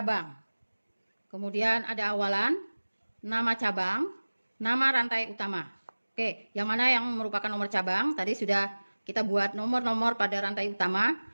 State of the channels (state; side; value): inverted; both; correlation -1.00